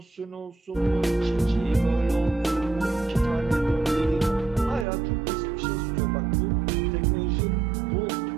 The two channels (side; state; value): left; drops out; at 4.9 s